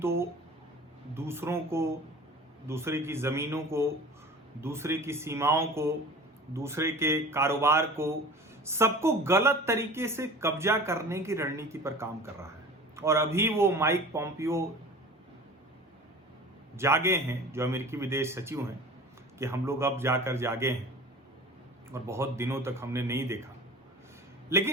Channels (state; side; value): normal; both; correlation 0.40